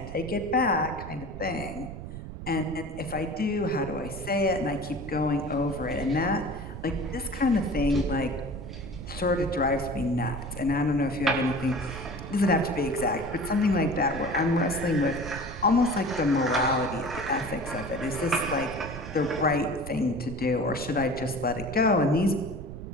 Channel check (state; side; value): noise; right; rumble, 10 dB below the sound